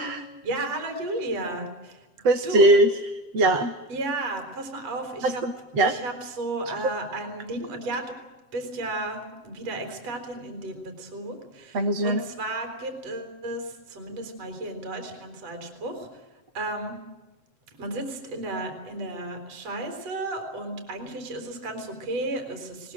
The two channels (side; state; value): left; late; 7.6 ms